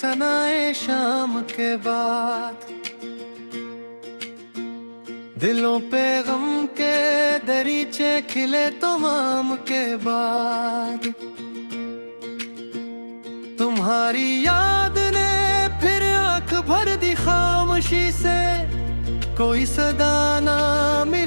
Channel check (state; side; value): inverted; both; correlation -1.00